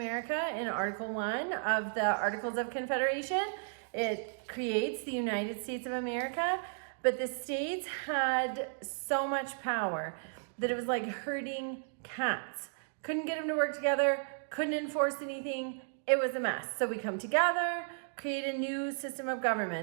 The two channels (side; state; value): left; silent; digital silence